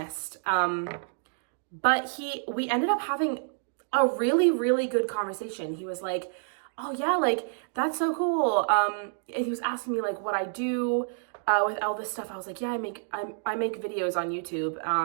But we ended up having a really, really good conversation. He was like, "Oh yeah, like that's so cool." And he was asking me like what I do with Elvis stuff. I was like, "Yeah, I make videos on YouTube."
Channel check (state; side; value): silent; left; digital silence